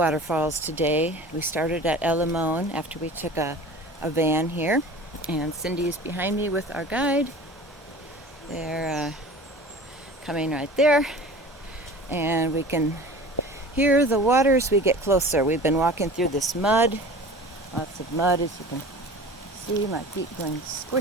today. We started at Limon after we took a van here, and Cindy is behind me with our guide. They're coming right there, and we can hear the water as we get closer. We've been walking through this mud, lots of mud, as you can see. My feet going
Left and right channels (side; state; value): both; normal; correlation 0.40